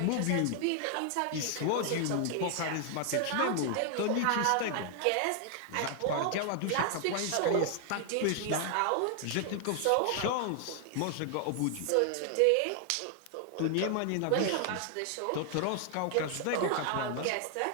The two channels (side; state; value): both; different; correlation 0.00